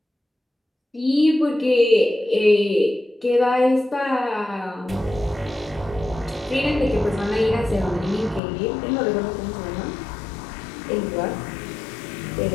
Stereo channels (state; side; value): drops out; right; at 8.4 s